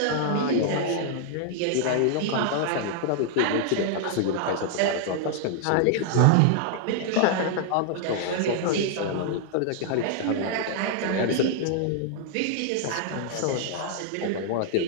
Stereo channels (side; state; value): both; different; correlation -0.01